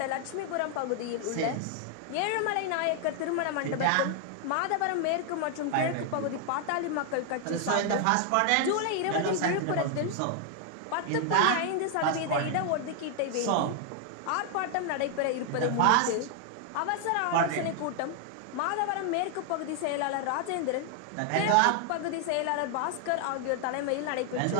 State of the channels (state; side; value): different; both; correlation 0.00